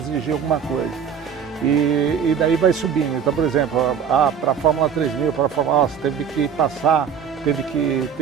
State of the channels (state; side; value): quieter; left; 7.5 dB